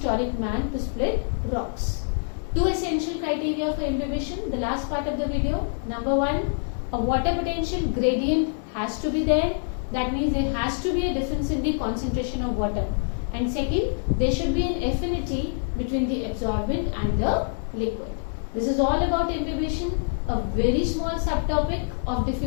man to split rocks. Two essential criteria for imbibition, the last part of the video. Number one, a water potential gradient has to be there. That means there has to be a difference in the concentration of water. And second, there should be an affinity between the absorbent and the liquid. This is all about imbibition, a very small subtopic of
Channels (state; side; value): silent; right; 61 dB below the other